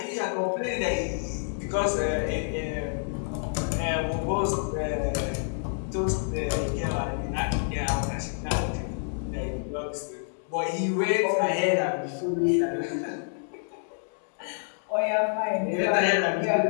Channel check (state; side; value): silent; right; 59 dB below the other